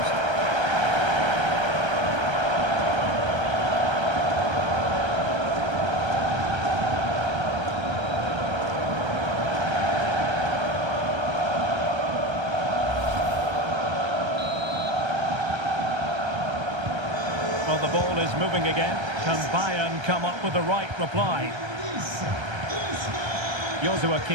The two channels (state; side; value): late; left; 1.3 ms